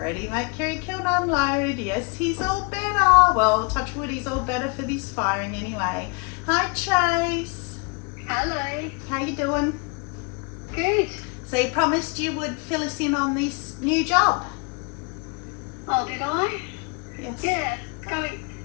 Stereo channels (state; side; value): quieter; right; 32.4 dB